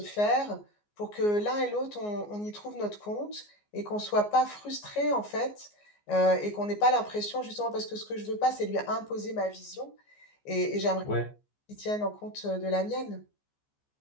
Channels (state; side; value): late; right; 14 ms